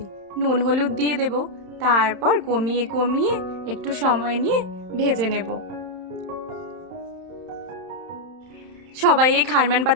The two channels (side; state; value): left; late; 31 ms